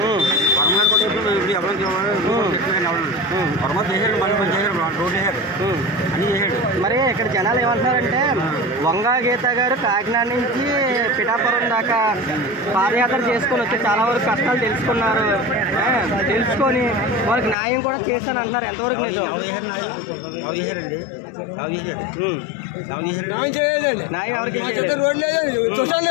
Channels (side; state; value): right; drops out; at 17.6 s